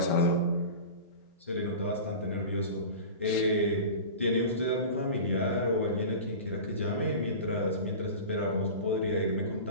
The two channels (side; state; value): both; inverted; correlation -0.33